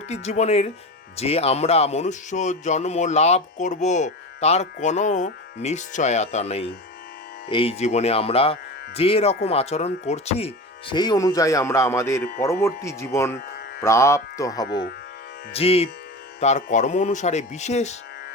জীবনের যে আমরা মনুষ্য জন্ম লাভ করব তার কোনো নিশ্চয়তা নেই। এই জীবনে আমরা যে রকম আচরণ করছি সেই অনুযায়ী আমরা আমাদের পরবর্তী জীবন প্রাপ্ত হব। জীব তার কর্ম অনুসারে বিশেষ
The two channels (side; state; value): both; normal; correlation 0.28